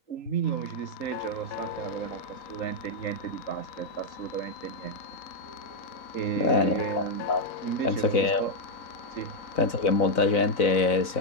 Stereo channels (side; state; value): right; late; 4.0 ms